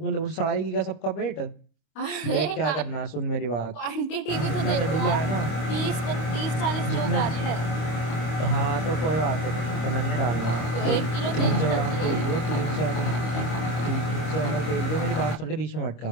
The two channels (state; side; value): late; right; 25 ms